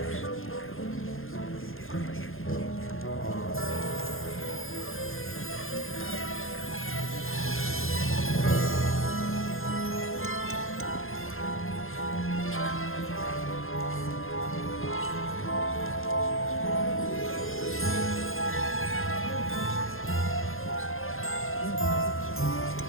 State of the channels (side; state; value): right; late; 0.60 ms